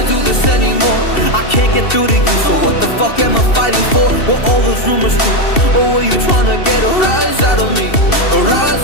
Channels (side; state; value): right; late; 2.7 ms